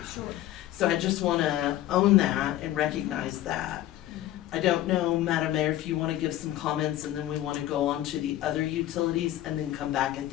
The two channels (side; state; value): right; quieter; 13.9 dB